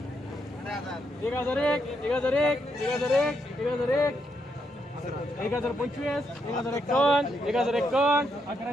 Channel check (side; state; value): both; normal; correlation 0.79